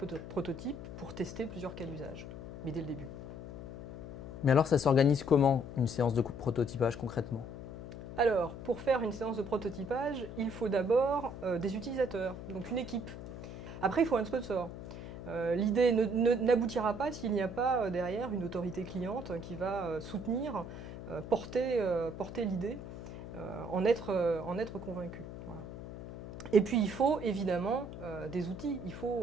prototypes pour tester plusieurs cas d'usage. Mais dès le début. Mais alors ça s'organise comment une séance de prototypage concrètement? Alors, pour faire une séance de prototypage, il faut d'abord des utilisateurs, donc une équipe. Après, il faut un sponsor. L'idée n'aboutira pas s'il n'y a pas derrière une autorité cliente qui va soutenir, porter l'idée, en être convaincu. Voilà. Et puis il faut évidemment des outils, il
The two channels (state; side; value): noise; left; hum, 10 dB below the sound